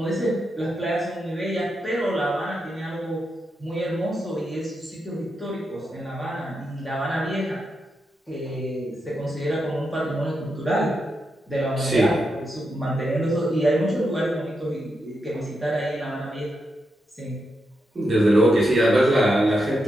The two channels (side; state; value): both; normal; correlation 0.85